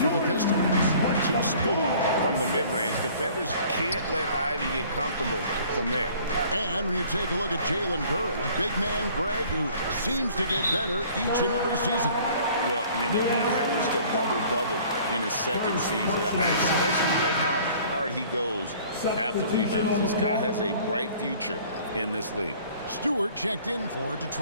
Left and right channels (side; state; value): both; inverted; correlation -0.52